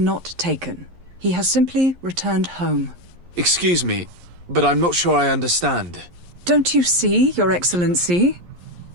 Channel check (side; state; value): left; late; 11 ms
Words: taken. He has simply returned home. Excuse me, but I'm not sure I understand. Don't you see, Your Excellency?